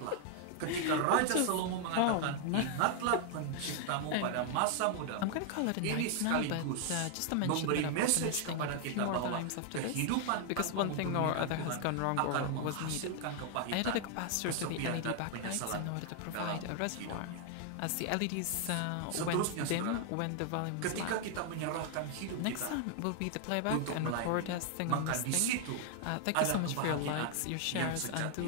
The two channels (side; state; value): both; different; correlation 0.00